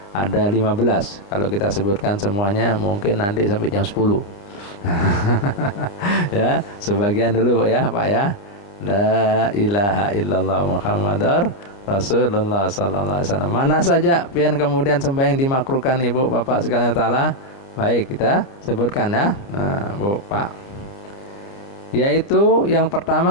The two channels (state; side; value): late; right; 30 ms